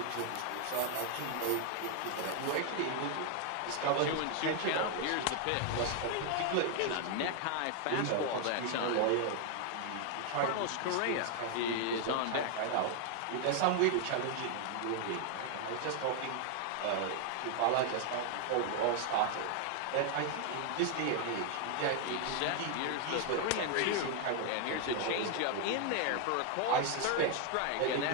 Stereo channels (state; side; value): different; both; correlation 0.00